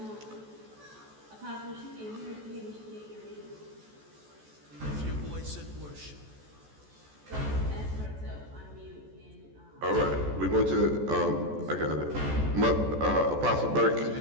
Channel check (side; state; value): left; late; 14 ms